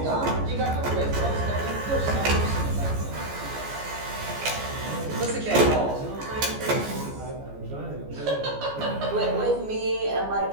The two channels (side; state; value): left; late; 14 ms